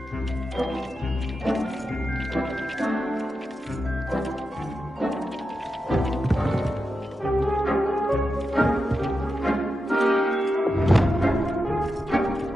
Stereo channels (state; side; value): normal; both; correlation 0.89